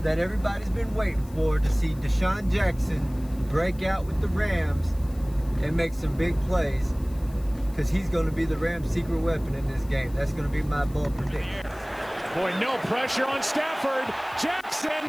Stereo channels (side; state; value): left; noise; hiss, 24 dB below the sound